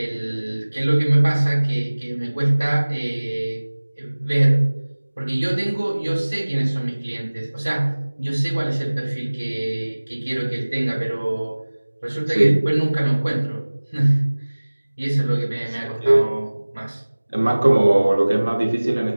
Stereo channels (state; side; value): inverted; both; correlation -1.00